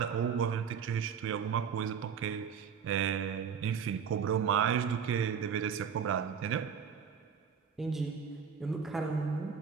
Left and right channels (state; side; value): quieter; left; 7.1 dB